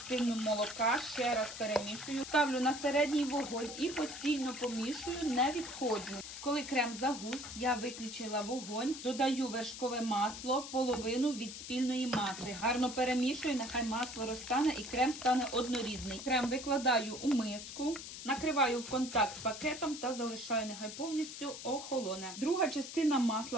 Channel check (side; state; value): left; noise; hiss, 10 dB below the sound